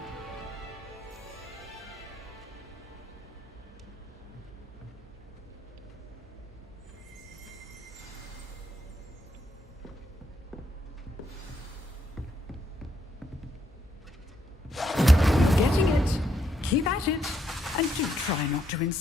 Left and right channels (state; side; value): normal; both; correlation 0.75